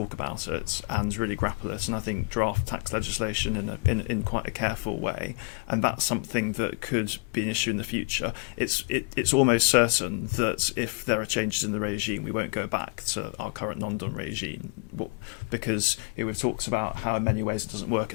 about it and really grapple it, and I think draft tax legislation in quite a careful way, and that's something that could be an issue in the future. It's almost certain that if there are changes in the regime, we won't go back to our current non-dom regime, because we've talked about how in many ways it doesn't work, it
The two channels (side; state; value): right; quieter; 30.6 dB